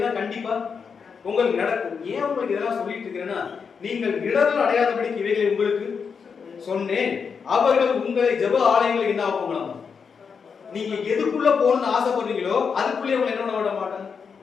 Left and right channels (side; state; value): right; quieter; 6.0 dB